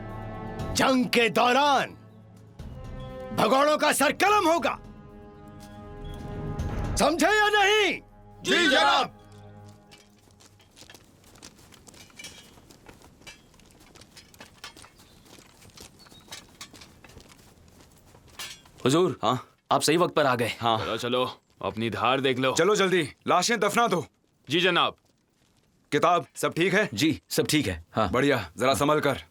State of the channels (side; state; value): both; identical; correlation 1.00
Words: जंग के दौरान भगोड़ों का सर कलम होगा, समझे या नहीं? जी जनाब। हुजूर, हाँ, आप सही वक्त पर आ गए। हाँ, चलो चलो, अपनी धार देख लो। चलो जल्दी, लाशें दफना दो। जी जनाब। किताब सब ठीक है? जी सब ठीक है। हाँ बढ़िया, जरा संभल कर।